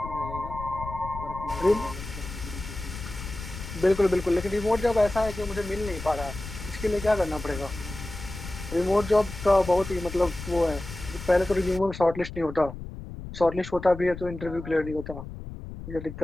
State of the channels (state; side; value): noise; left; rumble, 11 dB below the sound